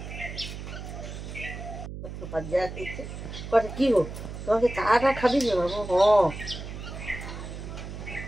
করে কি হোক তোমাকে চাটা খাবি না বাবু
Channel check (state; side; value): noise; right; hum, 9 dB below the sound